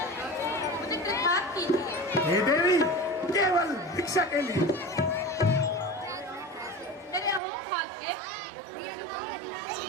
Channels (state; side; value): drops out; left; at 7.4 s